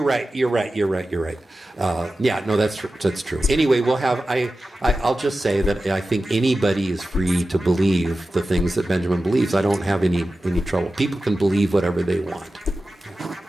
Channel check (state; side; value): normal; both; correlation 0.94